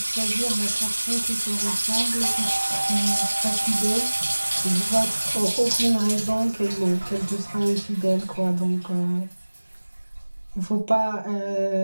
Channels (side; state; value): both; inverted; correlation -1.00